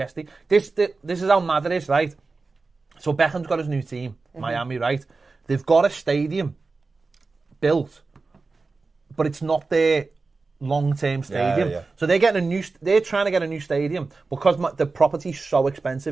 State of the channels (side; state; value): left; quieter; 3.9 dB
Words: This is how mad it is, right? So Beckham's got his new team, Miami, right? They've got a stadium built, but it's not their long-term stadium. Yeah. So they're trying to get a new stadium because the property's so